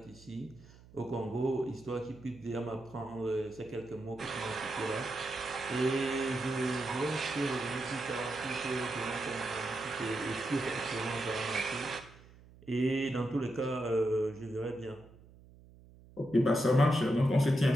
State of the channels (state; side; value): noise; right; hum, 23 dB below the sound